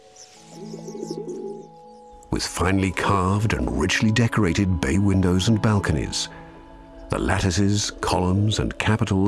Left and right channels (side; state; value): both; identical; correlation 1.00